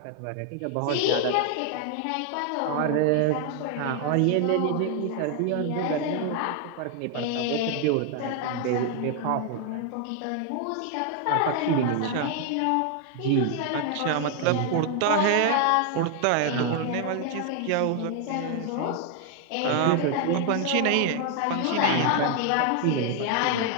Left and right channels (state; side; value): different; both; correlation 0.00